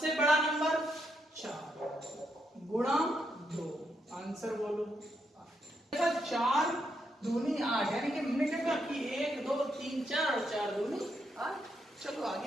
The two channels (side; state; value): both; normal; correlation 0.79